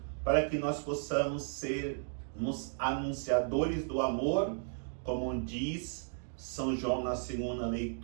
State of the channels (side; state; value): left; silent; digital silence